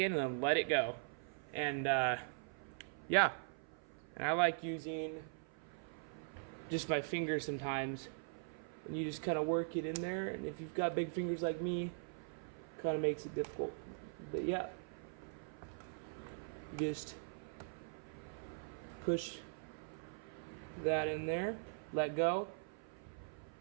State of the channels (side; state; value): left; silent; 50 dB below the other